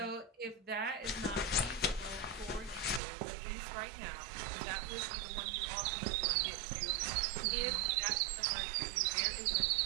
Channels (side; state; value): left; drops out; at 3.0 s